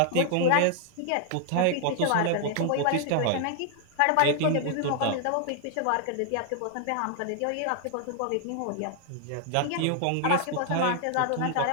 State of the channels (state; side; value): different; both; correlation 0.00